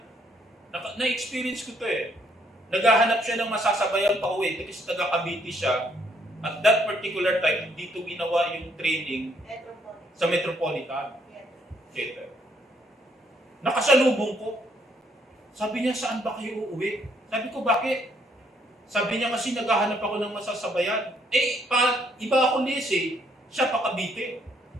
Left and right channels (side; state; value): both; normal; correlation 0.69